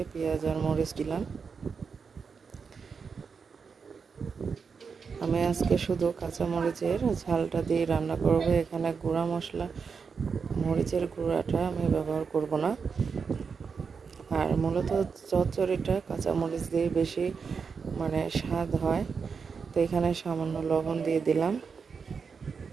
পেঁয়াজ আর মরিচ দিলাম। আমি আজকে শুধু কাঁচা মরিচের ঝালটা দিয়ে রান্না করব। এখানে গুঁড়া মশলা, মরিচের গুঁড়াটা আমি ব্যবহার করব না। আর মূলত চচ্চড়িটা কাঁচা মরিচ দিয়ে বেশি স্বাদ হয়। তো এখানে সামান্য লবণ দিয়ে দিলাম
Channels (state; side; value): quieter; left; 5.6 dB